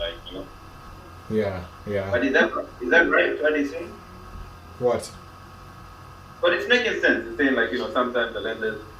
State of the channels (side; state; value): both; identical; correlation 1.00